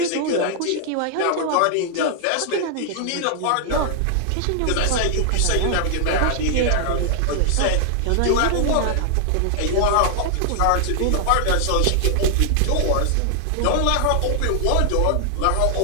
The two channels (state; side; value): different; both; correlation 0.00